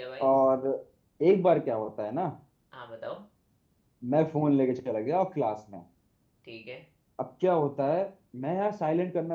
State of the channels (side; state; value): both; identical; correlation 1.00